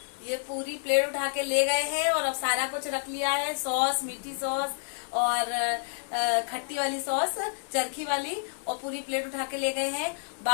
ये पूरी प्लेट उठा के ले गए हैं। और अब सारा कुछ रख लिया है, सॉस, मीठी सॉस और खट्टी वाली सॉस, चरखी वाली, और पूरी प्लेट उठा के ले गए हैं।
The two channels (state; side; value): silent; right; digital silence